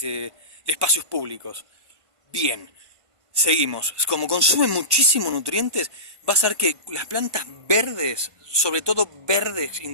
espacios públicos. Bien, seguimos. Como consume muchísimos nutrientes, vas a ver que las plantas verdes, sobre todo verdes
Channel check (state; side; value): late; left; 1.5 ms